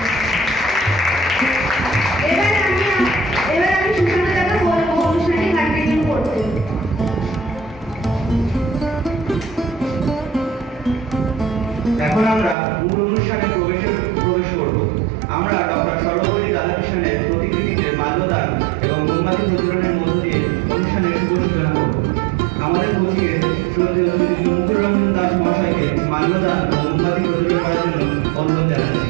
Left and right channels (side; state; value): left; drops out; at 12.6 s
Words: এবার আমি সুশান্তদাকে বলবো অনুষ্ঠানটি কন্টিনিউ করতে। এখন আমরা মূল অনুষ্ঠানে প্রবেশ করব। আমরা ডক্টর সর্বপল্লী রাধাকৃষ্ণনের প্রতিকৃতিতে মাল্যদান এবং মোমবাতি প্রজ্বলনের মধ্য দিয়ে অনুষ্ঠানের শুভ সূচনা করব। আমাদের পথিকে শ্রদ্ধেয় শ্রী মুকুল রমন দাস মহাশয়কে মাল্যদান ও মোমবাতি প্রজ্বলন করার জন্য অনুরোধ জানাচ্ছি।